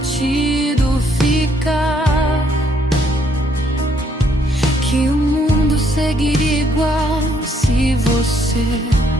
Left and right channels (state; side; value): normal; both; correlation 0.69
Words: ficar, que o mundo seguiria igual se você